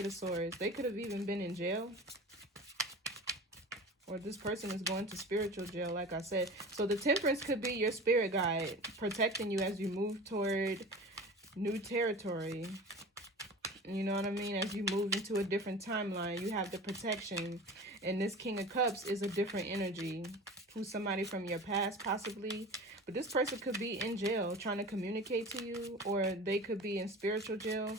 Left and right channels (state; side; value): normal; both; correlation 0.36